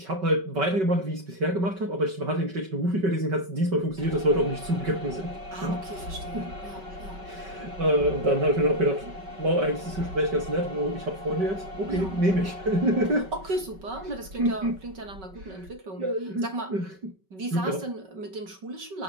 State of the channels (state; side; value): late; left; 5.3 ms